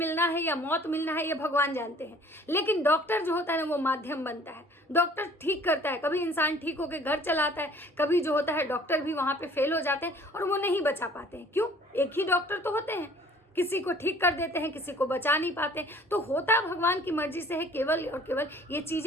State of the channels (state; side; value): normal; both; correlation 0.53